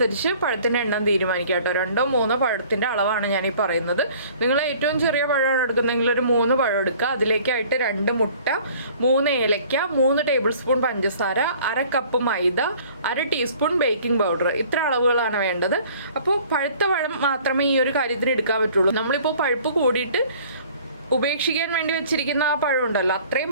പഴത്തിൻ്റെ എണ്ണം തീരുമാനിക്കുക കേട്ടോ. 2 or 3 പഴത്തിൻ്റെ അളവാണ് ഞാൻ ഈ പറയുന്നത്. നിങ്ങൾ ഏറ്റവും ചെറിയ പഴമാണ് എടുക്കുന്നതെങ്കിൽ ഒരു 3 പഴം എടുക്കുക. അതിലേക്കായിട്ട് 2 മുട്ട, 3 ഏലക്ക, 3 ടേബിൾ സ്പൂൺ പഞ്ചസാര, 1/2 കപ്പ് മൈദ, 1/2 ടീസ്പൂൺ ബേക്കിംഗ് പൗഡർ. ഇത്ര അളവുകളാണ് വേണ്ടത്. അപ്പോൾ പഴുത്ത പഴം മാത്രമേ ഈ ഒരു കാര്യത്തിന് എടുക്കാൻ പറ്റുള്ളൂ. നമ്മളിപ്പോൾ പഴുപ്പ് കൂടി ഉപേക്ഷിക്കാൻ വേണ്ടി വെച്ചിരിക്കുന്ന ആ പഴം ഉണ്ടല്ലോ, അത്രയും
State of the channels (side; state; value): both; inverted; correlation -0.52